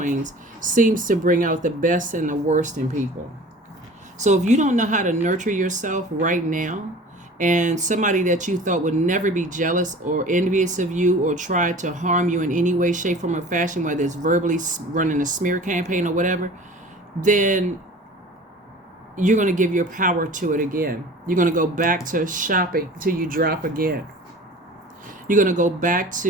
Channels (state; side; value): normal; both; correlation 0.42